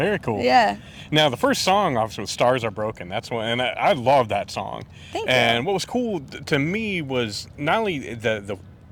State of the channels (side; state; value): both; identical; correlation 1.00